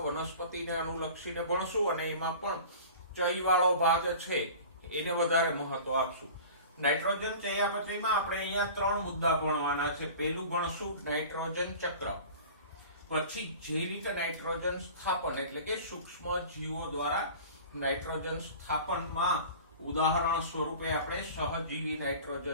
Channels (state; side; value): inverted; both; correlation -0.40